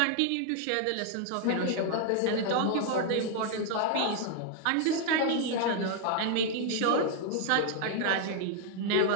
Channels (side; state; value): both; different; correlation 0.00